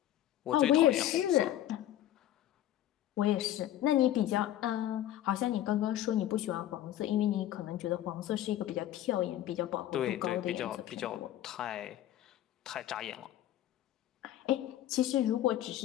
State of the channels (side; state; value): right; quieter; 12.7 dB